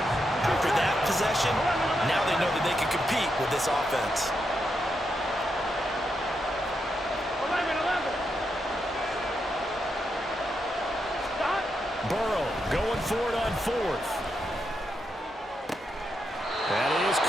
After that possession, now they know that they can compete with this offense. Burrow going for it on 4th. That is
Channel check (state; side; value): normal; both; correlation 0.83